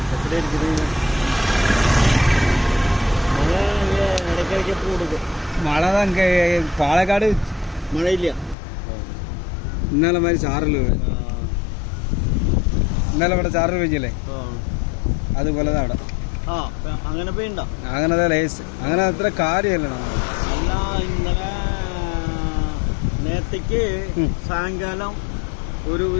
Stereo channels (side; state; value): right; drops out; at 8.6 s